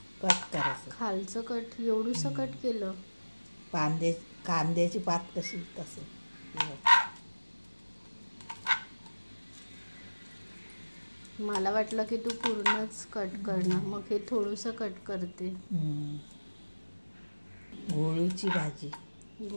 कट करायचं. खालचं कट एवढंसं कट केलं. कांद्याची पात कशी तसं. मला वाटलं की तू पूर्णच कट करणार, मग हे थोडंसं कट करते. घोळूची भाजी.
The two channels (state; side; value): inverted; both; correlation -1.00